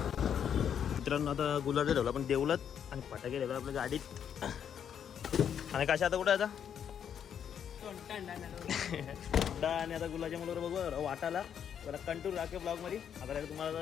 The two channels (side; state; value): right; quieter; 8.5 dB